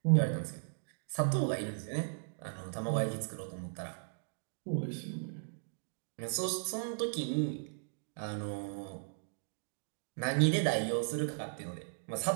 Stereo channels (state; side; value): silent; left; digital silence